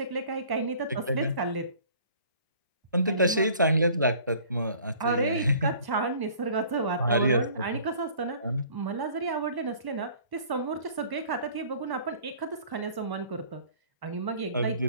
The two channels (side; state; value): both; inverted; correlation -0.52